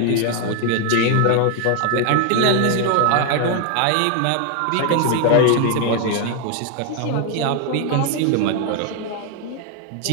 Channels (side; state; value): both; different; correlation 0.01